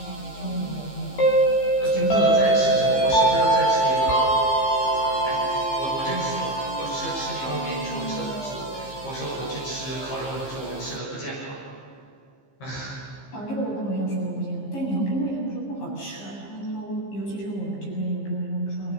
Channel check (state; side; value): late; right; 15 ms